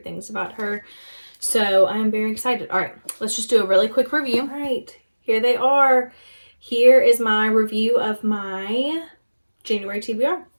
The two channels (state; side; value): inverted; both; correlation -1.00